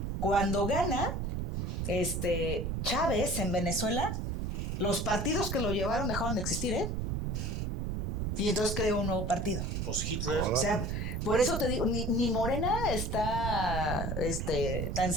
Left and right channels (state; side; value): noise; right; rumble, 1 dB below the sound